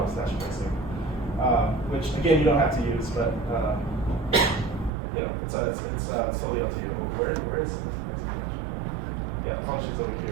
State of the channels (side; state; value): left; drops out; at 4.9 s